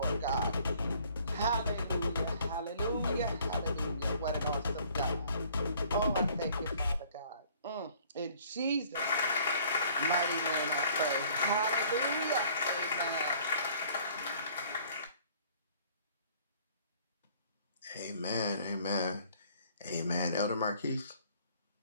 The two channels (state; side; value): inverted; both; correlation -0.57